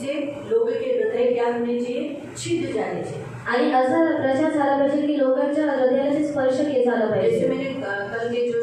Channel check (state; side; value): identical; both; correlation 1.00